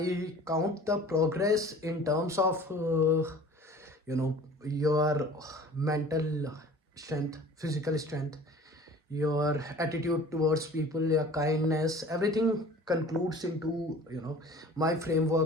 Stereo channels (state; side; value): normal; both; correlation 0.45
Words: count the progress in terms of your mental strength, physical strength, your attitude towards people, your kindness. Everything concludes into my